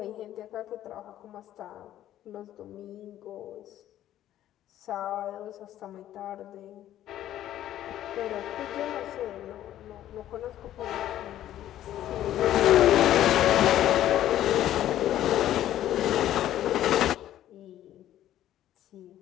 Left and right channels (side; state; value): right; quieter; 12.5 dB